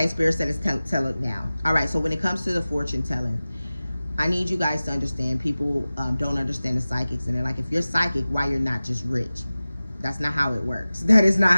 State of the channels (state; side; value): inverted; both; correlation -0.97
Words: Spirit said it's tell it now. All right, so when it comes to the fortune telling, I need you guys to understand, people don't understand the psychics, and they're like, if you're psychic, why you're not just rich? That's not how it works. That is not